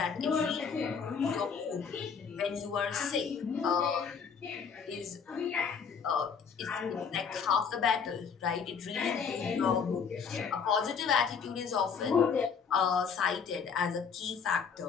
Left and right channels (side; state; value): right; quieter; 6.2 dB